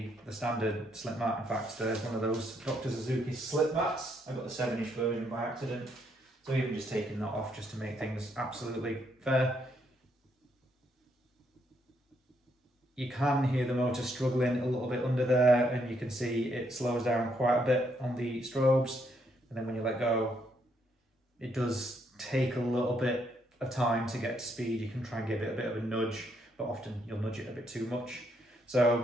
standard slip mat. In fact, there's one of those Dr. Suzuki slip mats. I got the 7-inch version by accident. So even just taking that off just to make things absolutely fair. You can hear the motor struggling a little bit under there, and you can see it slows down quite a bit on the strobes. And then when you let go, it does take a little bit of time to get to speed. You can try and give it a bit of a nudge, but often you'll nudge it a bit too much.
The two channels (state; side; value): normal; both; correlation 0.74